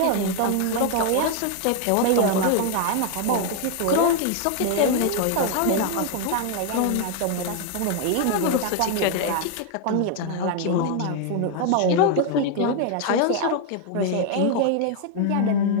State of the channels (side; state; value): both; different; correlation 0.00